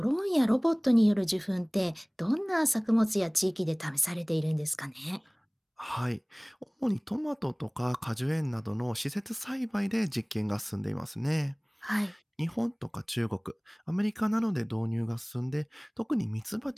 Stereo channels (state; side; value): identical; both; correlation 1.00